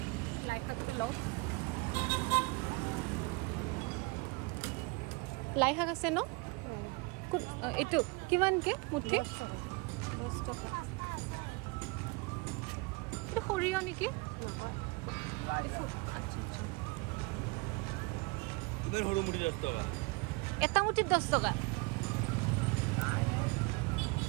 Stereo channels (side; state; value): left; quieter; 27.7 dB